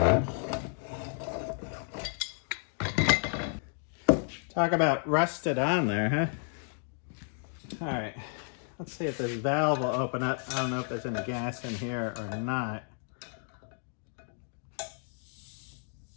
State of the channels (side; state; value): right; silent; 55 dB below the other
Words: Talk about rusted on there, huh? All right, let's see if this valve will open up. I don't know if there's any gas in here or not.